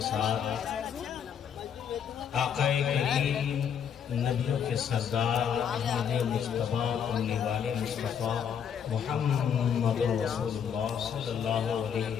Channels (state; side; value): quieter; right; 7.9 dB